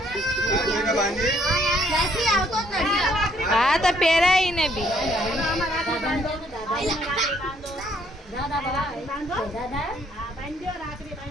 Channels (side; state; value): both; normal; correlation 0.66